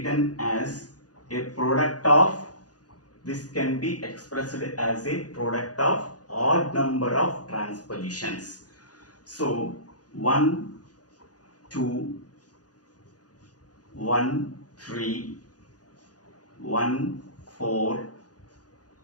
as a product of, this can be expressed as a product of odd number of transpositions. So 1, 2, 1, 3, 1, 4,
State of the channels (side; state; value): right; late; 0.68 ms